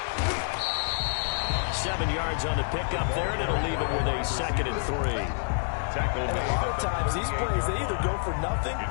7 yards on the pickup there, and it'll leave him with a 2nd and 3. And a lot of times, these plays, they either go for nothing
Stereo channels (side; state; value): right; silent; digital silence